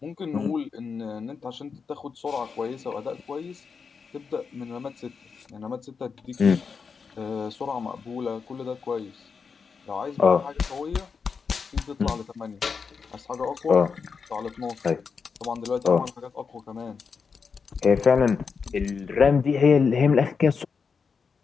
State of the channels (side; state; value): right; quieter; 5.6 dB